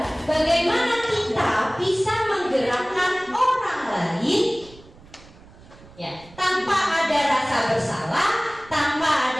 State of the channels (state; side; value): noise; right; rumble, 23 dB below the sound